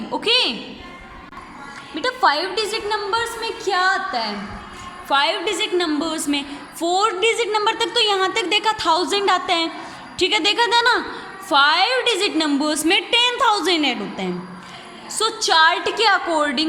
ओके बेटा, 5 डिजिट नंबर्स में क्या आता है, 5 डिजिट नंबर्स में 4 डिजिट नंबर तक तो यहाँ तक देखा 1000 आता है, ठीक है, देखा था ना। 5 डिजिट नंबर्स में 10,000 ऐड होता है। सो चार्ट के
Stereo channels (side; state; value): both; identical; correlation 1.00